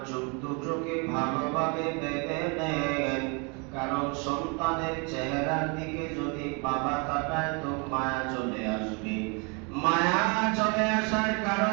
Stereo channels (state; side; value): quieter; left; 32.7 dB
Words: চোখ দুটোকে ভালোভাবে বেঁধে নেন, কারণ সন্তানের চেহারার দিকে যদি বাবা তাকায় তো মায়া চলে আসবে। মায়া চলে আসার